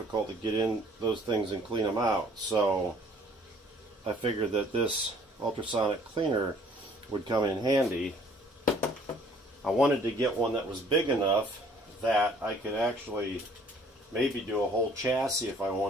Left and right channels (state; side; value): normal; both; correlation 0.57